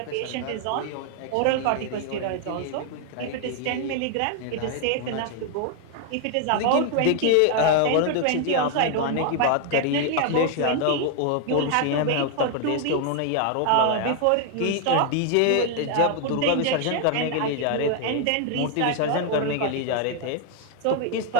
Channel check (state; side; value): different; both; correlation 0.00